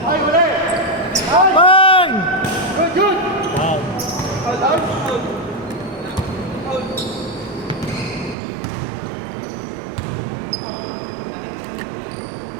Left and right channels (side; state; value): left; drops out; at 8.3 s